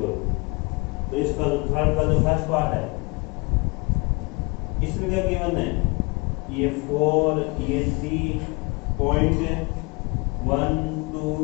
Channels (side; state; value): right; quieter; 28.5 dB